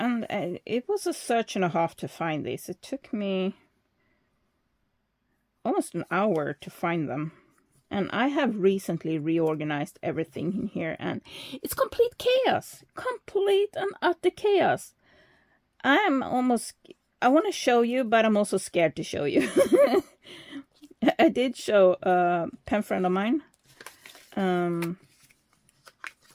it was a search and a half to find these. It took me almost an hour to find them. And I have recently reorganized everything in here, and it's complete chaos. Complete and utter chaos. I want to show you, but I'm also scared to show you. I did show a pen friend of mine.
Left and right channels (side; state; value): both; identical; correlation 1.00